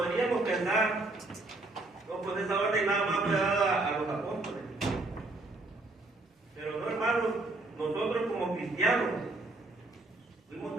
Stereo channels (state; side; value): quieter; left; 3.0 dB